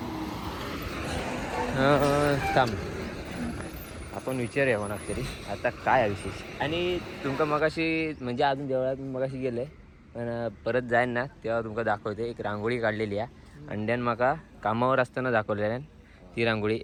थांब आपण विचारूया कोणाक तरी आता काय आहे विशेष. आणि तुमका मगाशी म्हणजे अजून देवळात मगाशी गेलं आहे, पण परत जाईन ना तेव्हा तुमका दाखवते. एक रांगोळी काढलेली आहे अंड्यान, माका कामावर असताना दाखवलेल्या ती रांगोळी.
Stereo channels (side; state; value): both; identical; correlation 1.00